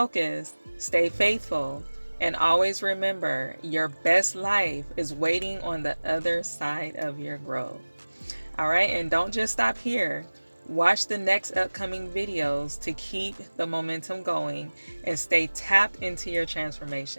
stay faithful, and always remember, your best life is waiting on the other side of your growth. All right, and don't just stop here. Watch the next upcoming videos to keep the momentum going and stay tapped into your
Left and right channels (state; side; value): inverted; both; correlation -1.00